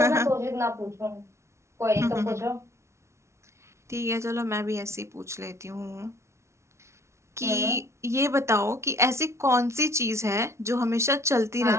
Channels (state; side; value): late; left; 0.13 ms